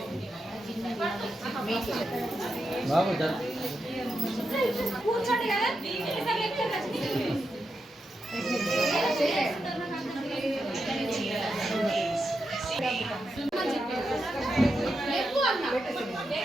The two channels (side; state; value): both; normal; correlation 0.86